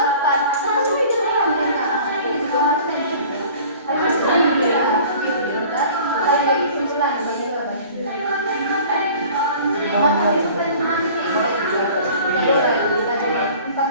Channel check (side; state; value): both; inverted; correlation -0.46